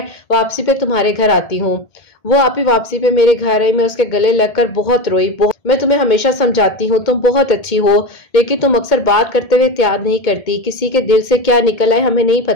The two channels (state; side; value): late; right; 2.2 ms